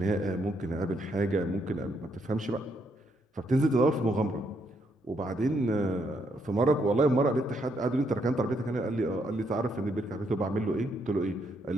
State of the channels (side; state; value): both; normal; correlation 0.75